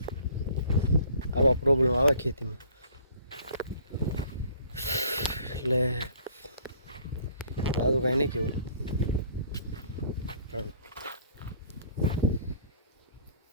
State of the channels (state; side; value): inverted; both; correlation -0.55